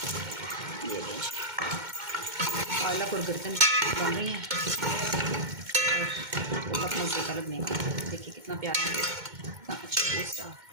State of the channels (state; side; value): late; left; 2.1 ms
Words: ये पालक और गर्दन बन रही हैं, और बहुत मज़े का लगने का। देखिए कितना प्यारा है, कितना अच्छा टेस्ट